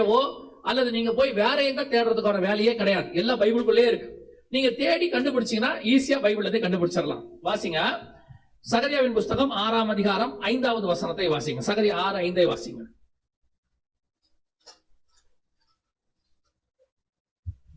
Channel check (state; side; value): identical; both; correlation 1.00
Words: அல்லது நீங்க போய் வேற எங்க தேடுறதுக்கான வேலையே கிடையாது, எல்லாம் பைபிளுக்குள்ளே இருக்கு. நீங்க தேடி கண்டுபிடிச்சீங்கன்னா ஈஸியா பைபிளத்தை கண்டுபிடிச்சிடலாம். வாசிங்க, சகரியாவின் புஸ்தகம் 6ஆம் அதிகாரம் 5வது வசனத்தை வாசிங்க. சகரியா 6:5 வாசிங்க.